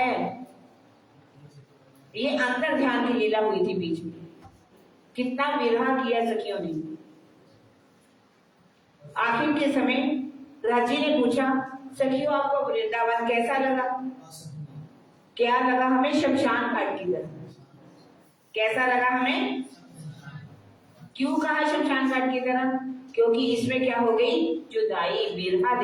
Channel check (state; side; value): identical; both; correlation 1.00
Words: ये अंतर ध्यान की लीला हुई थी बीच में। कितना विरह किया सखियों ने। आखिर के समय राजी ने पूछा, सखियों आपको वृंदावन कैसा लगा? क्या लगा हमें? शमशान घाट की तरह। कैसा लगा हमें? क्यों कहा शमशान घाट की तरह? क्योंकि इसमें क्या हो गई? जुदाई, विरह